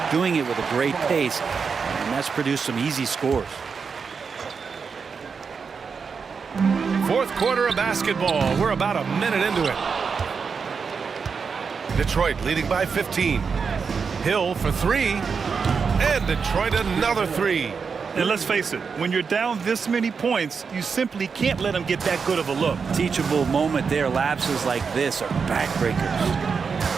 doing it with a great pace, and that's produced some easy scores. Fourth quarter of basketball. We're about a minute into it. Detroit leading by 15. Hill for three. And Detroit another three. And let's face it, when you're down this many points, you simply can't let them get that good of a look. Teachable moment there. Lapses like this are backbreakers.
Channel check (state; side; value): quieter; left; 5.6 dB